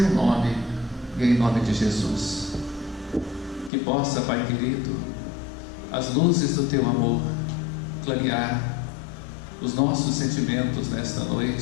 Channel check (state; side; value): drops out; right; at 3.7 s